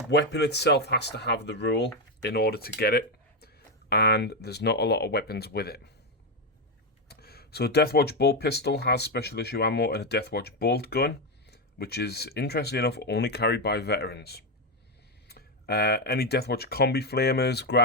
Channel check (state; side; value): normal; both; correlation 0.07